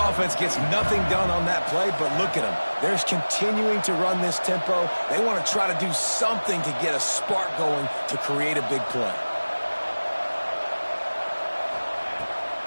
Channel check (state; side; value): inverted; both; correlation -1.00